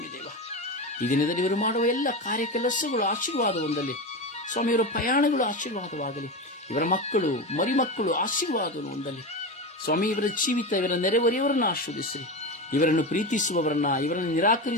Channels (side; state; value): both; normal; correlation 0.21